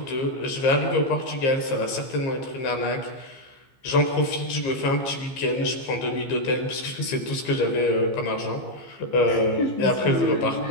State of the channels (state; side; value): late; right; 15 ms